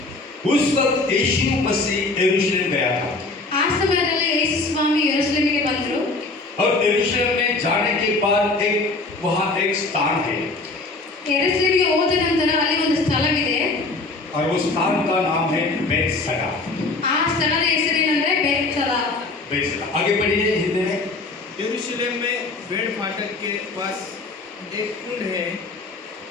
उस वक्त यीशु मसीह यरूशलेम गया था। ಆ ಸಮಯದಲ್ಲಿ ಯೇಸು ಸ್ವಾಮಿ ಯೆರೂಸಲೇಮಿಗೆ ಬಂದರು. और यरूशलेम में जाने के बाद वहाँ एक स्थान है, ಯೆರೂಸಲೇಮಿಗೆ ಹೋದ ನಂತರ ಅಲ್ಲಿ ಒಂದು ಸ್ಥಳವಿದೆ. और उस स्थान का नाम है बेतसदा। ಆ ಸ್ಥಳದ ಹೆಸರೇನೆಂದರೆ ಬೇತ್ಸದ. बेतसदा। आगे पढ़िए हिंदी में। यरूशलेम में भेड़ फाटक के पास एक कुंड है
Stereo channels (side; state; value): right; quieter; 3.4 dB